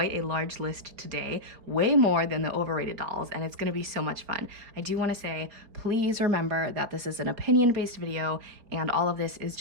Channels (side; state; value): left; late; 4.7 ms